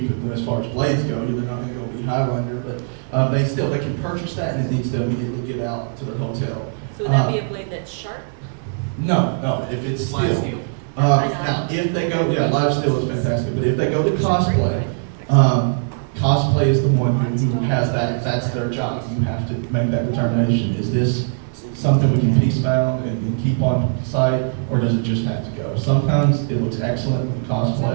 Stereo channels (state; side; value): silent; left; 65 dB below the other